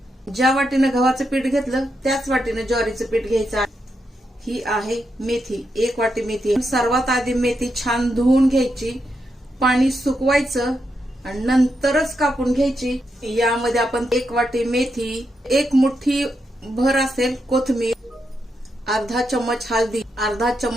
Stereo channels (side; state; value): both; normal; correlation 0.83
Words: ज्या वाटीने गव्हाचं पीठ घेतलं त्याच वाटीने ज्वारीचं पीठ घ्यायचं आहे। ही आहे मेथी, 1 वाटी मेथी। सर्वात आधी मेथी छान धुवून घ्यायची, पाणी सुकवायचं आणि नंतरच कापून घ्यायची। यामध्ये आपण 1 वाटी मेथी, 1 मुठ्ठी भर असेल कोथिंबीर, अर्धा चम्मच हळदी, अर्धा